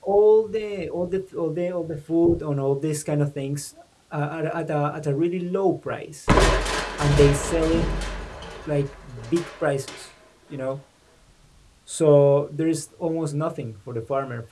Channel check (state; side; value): identical; both; correlation 1.00